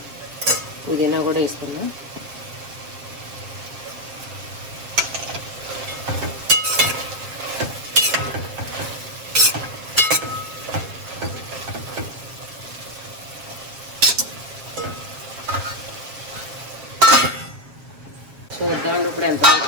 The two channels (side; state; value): left; late; 7.4 ms